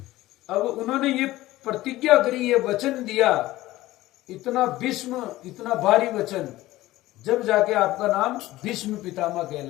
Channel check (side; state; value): right; quieter; 16.8 dB